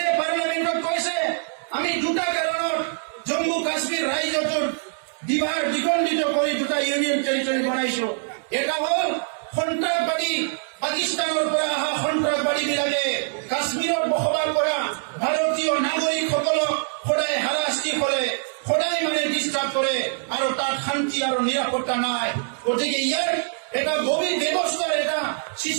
পাৰ্লামেণ্টত কৈছে আমি দুটা কাৰণত জম্মু কাশ্মীৰ ৰাজ্যটোৰ দ্বিখণ্ডিত কৰি দুটা ইউনিয়ন টেৰিটৰি বনাইছো। এটা হ'ল সন্ত্ৰাসবাদী পাকিস্তানৰ পৰা অহা সন্ত্ৰাসবাদীবিলাকে কাশ্মীৰত বসবাস কৰা ভাৰতীয় নাগৰিকসকলক সদায় হাৰাশাস্তি কৰে, সদায় ডিস্টার্ব করে আর তার শান্তি আর নিরাপত্তা নাই। গতিকে ইয়ার এটা গভীর ব্যবস্থার এটা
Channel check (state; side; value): silent; left; digital silence